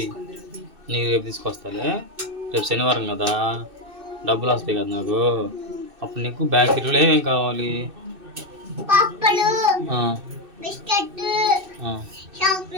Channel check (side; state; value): left; late; 2.6 ms